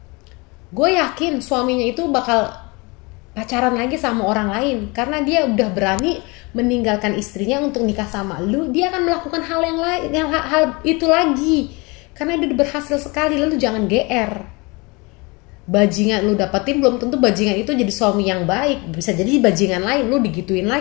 gue yakin suaminya itu bakal pacaran lagi sama orang lain. Karena dia udah berani meninggalkan istrinya untuk nikah sama lu, dia akan melakukan hal yang lain, hal itu lagi. Karena dia udah berhasil sekali. Lalu jangan GR. Bajingan lu dapetin belum tentu bajingan itu jadi suami yang baik. Bisa jadi bajingan lain, lu digituin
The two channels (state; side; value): quieter; right; 27.0 dB